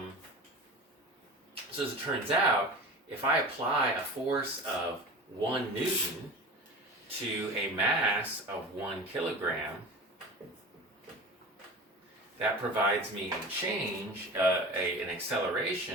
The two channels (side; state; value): both; normal; correlation 0.34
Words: as it turns out, if I apply a force of 1 Newton to a mass of 1 kilogram, that provides me a change, an